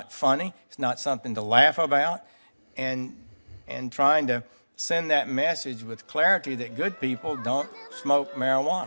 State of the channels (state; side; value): inverted; both; correlation -1.00